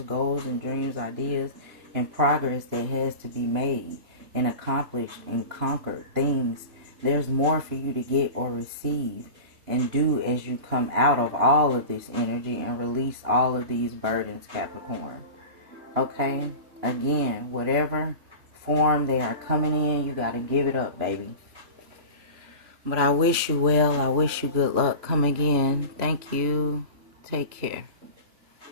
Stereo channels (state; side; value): late; left; 3.0 ms